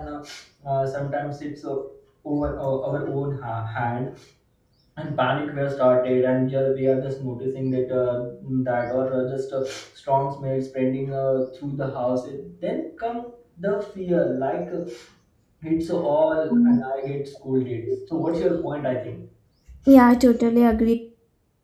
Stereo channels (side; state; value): both; identical; correlation 1.00